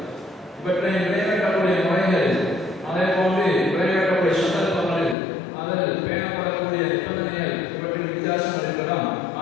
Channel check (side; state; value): right; drops out; at 5.2 s